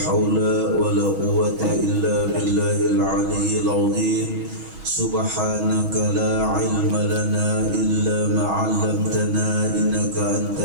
ولا قوة إلا بالله العلي العظيم سبحانك لا علم لنا إلا ما علمتنا إنك أنت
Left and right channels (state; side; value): late; left; 6.2 ms